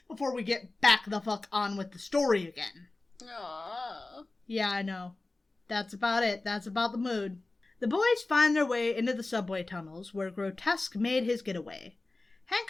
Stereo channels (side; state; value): right; quieter; 3.1 dB